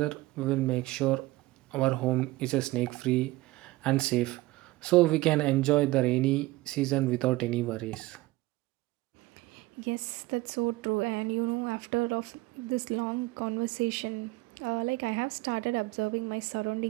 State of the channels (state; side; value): quieter; left; 19.4 dB